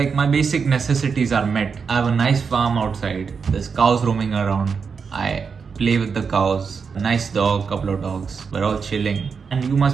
my basic necessities are met. I have a nice farm outside. There's cows roaming around. I play with the cows. A nice dog, couple of dogs. We're all chilling. And you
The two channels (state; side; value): quieter; left; 5.7 dB